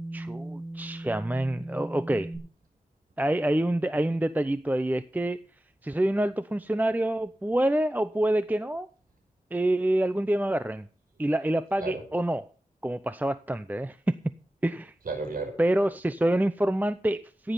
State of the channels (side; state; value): both; normal; correlation 0.94